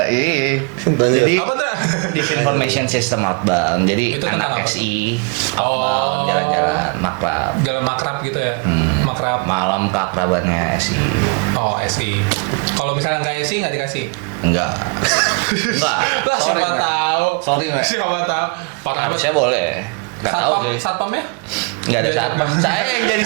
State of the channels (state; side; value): quieter; left; 32.7 dB